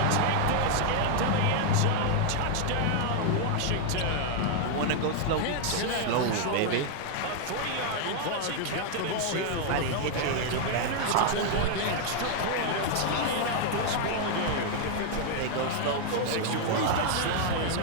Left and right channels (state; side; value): different; both; correlation 0.00